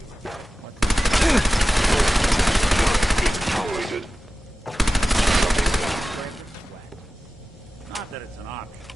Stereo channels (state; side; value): normal; both; correlation 0.95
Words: Tolerated. Not that it's an option.